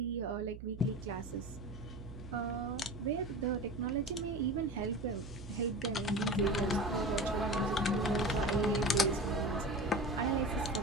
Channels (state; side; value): noise; right; hum, 12 dB below the sound